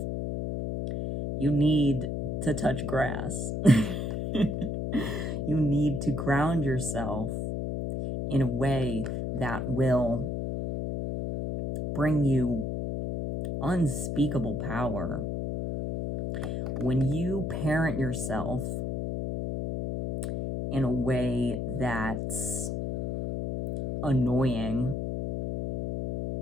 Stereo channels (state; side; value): noise; left; hum, 2 dB below the sound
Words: You need to touch grass. You need to ground yourself in a way that will bring you unspeakable power. When you parent yourself in a way that's annoying,